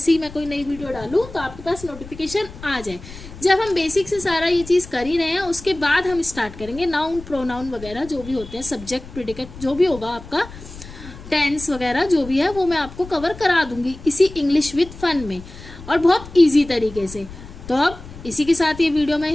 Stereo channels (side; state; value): left; noise; rumble, 16 dB below the sound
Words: ही मैं कोई नई वीडियो डालूँ तो आपके पास नोटिफिकेशन आ जाए। जब हम बेसिक से सारा ये चीज़ कर ही रहे हैं, उसके बाद हम स्टार्ट करेंगे नाउन, प्रोनाउन वगैरह जो भी होते हैं, सब्जेक्ट, प्रेडिकेट, जो भी होगा आपका, टेंस वगैरह जो भी है वो मैं आपको कवर करा दूंगी इसी इंग्लिश विद फन में, और बहुत ईजी तरीके से। तो अब इसी के साथ ये वीडियो मैं